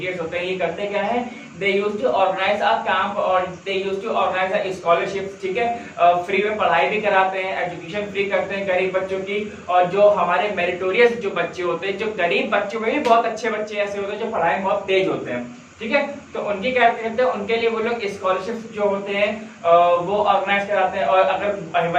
होते हैं, ये करते क्या है, they use to organise a camp और they use to organise a scholarship, ठीक है। फ्री में पढ़ाई भी कराते हैं, एजुकेशन फ्री करते हैं गरीब बच्चों की, और जो हमारे मेरिटोरियस जो बच्चे होते हैं, जो गरीब बच्चों में भी बहुत अच्छे बच्चे ऐसे होते हैं जो पढ़ाई में बहुत तेज होते हैं, ठीक है। तो उनके क्या कहते हैं, उनके लिए वो लोग स्कॉलरशिप जो होते हैं वो ऑर्गेनाइज कराते हैं। और अगर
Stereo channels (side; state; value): both; identical; correlation 1.00